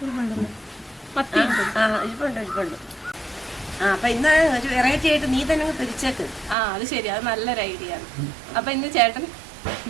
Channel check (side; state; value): left; drops out; at 6.6 s